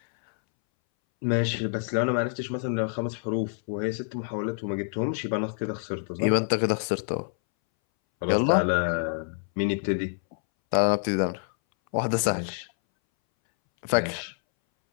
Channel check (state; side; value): silent; right; 60 dB below the other